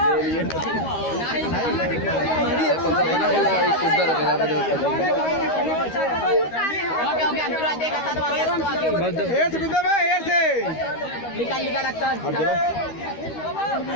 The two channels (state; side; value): late; right; 13 ms